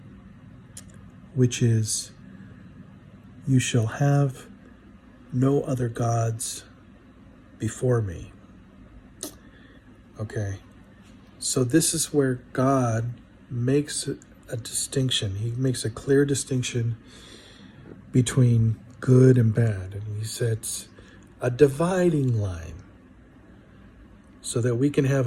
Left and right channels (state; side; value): identical; both; correlation 1.00